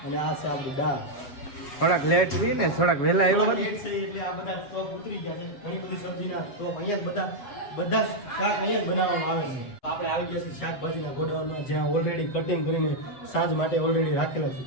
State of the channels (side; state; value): right; late; 8.0 ms